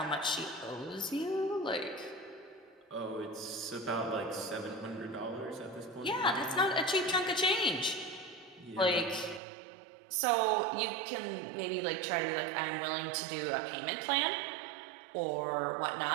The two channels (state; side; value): drops out; left; at 9.4 s